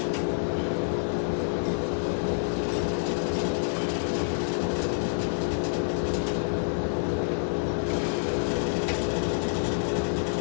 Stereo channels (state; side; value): silent; right; digital silence